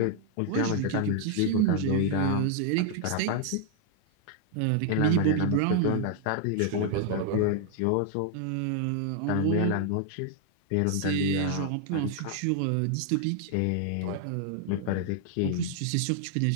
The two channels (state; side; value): different; both; correlation 0.00